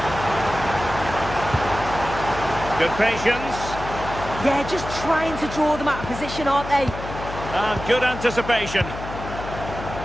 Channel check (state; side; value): noise; left; hum, 10 dB below the sound